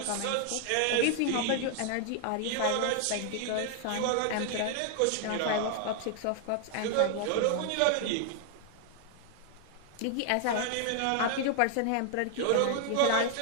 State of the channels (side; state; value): both; different; correlation 0.00